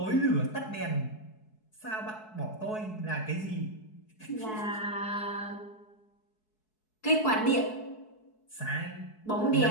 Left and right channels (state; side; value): late; right; 4.7 ms